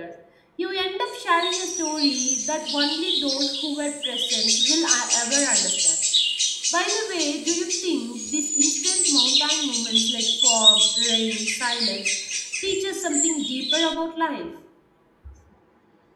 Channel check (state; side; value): identical; both; correlation 1.00